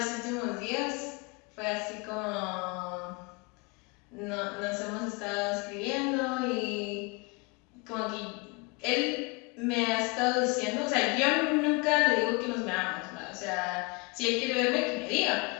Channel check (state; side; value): quieter; right; 29.3 dB